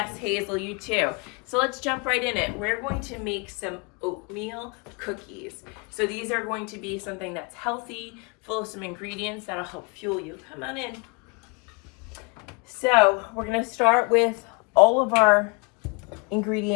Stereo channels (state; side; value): quieter; right; 31.0 dB